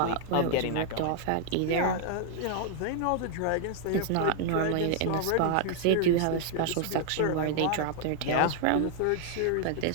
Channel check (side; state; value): both; different; correlation -0.01